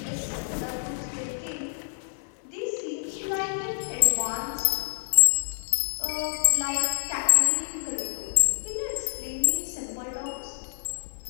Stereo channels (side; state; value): right; silent; 60 dB below the other